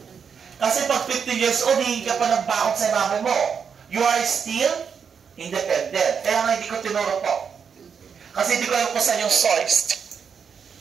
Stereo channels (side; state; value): left; quieter; 6.7 dB